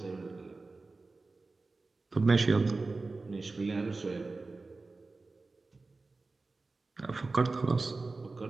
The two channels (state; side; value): quieter; left; 3.6 dB